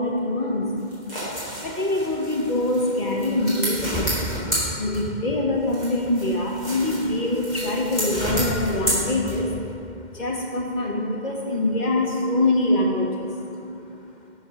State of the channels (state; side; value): late; left; 2.1 ms